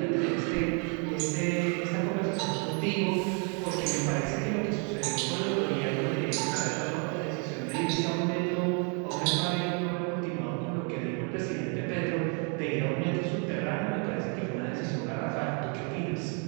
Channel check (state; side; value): quieter; left; 38.0 dB